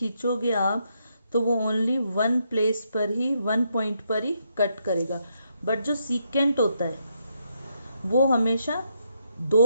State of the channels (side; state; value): both; inverted; correlation -0.78